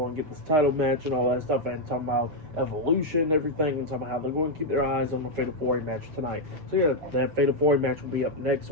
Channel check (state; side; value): late; left; 7.1 ms